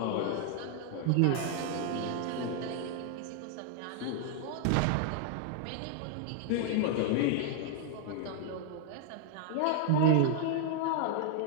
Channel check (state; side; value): different; both; correlation 0.00